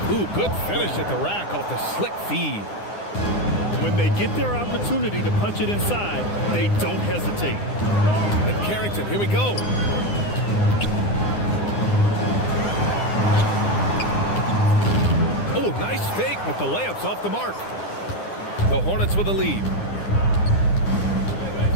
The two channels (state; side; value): late; right; 9.9 ms